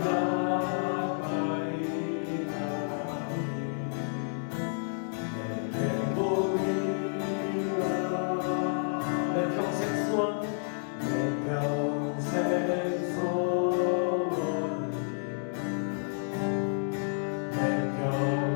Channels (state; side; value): silent; right; digital silence